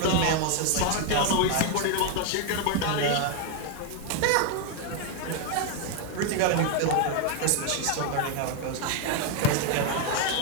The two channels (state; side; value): different; both; correlation 0.01